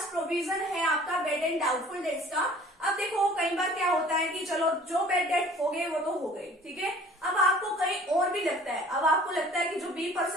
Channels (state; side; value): normal; both; correlation 0.50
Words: प्रोविजन है आपका बेड एंड डाउटफुल डेट्स का। अब देखो कई बार क्या होता है कि चलो जो बेड डेट हो गए वो तो हो गए, ठीक है। अब आपको कहीं और भी लगता है, अब आपको लगता है कि जो बी